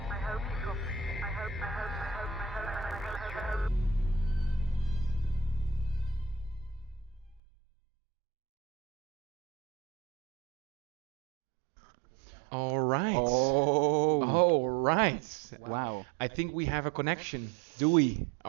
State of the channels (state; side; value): drops out; left; at 7.4 s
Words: I hope you got it. I hope. All right. Oh. All right. Wow. I think we have a connection. Do we?